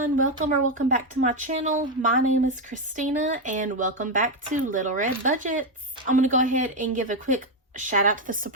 welcome back to my channel. My name is Christina and welcome back to Little Red Budgets. I'm going to go ahead and give a quick shout out to the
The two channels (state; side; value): normal; both; correlation 0.07